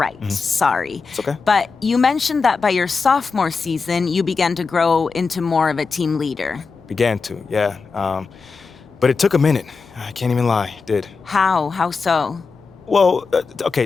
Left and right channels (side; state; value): right; quieter; 4.7 dB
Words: sorry. It's okay. But you mentioned that by your sophomore season, you began to grow into more of a team leader. Began to, yeah. But it took a minute. I can't even lie, it did. How? How so? Well, okay,